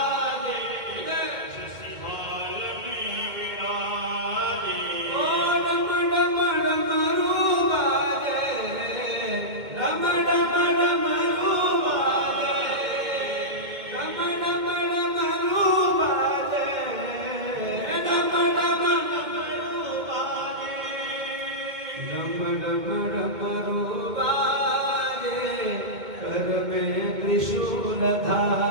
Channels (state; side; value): late; left; 2.3 ms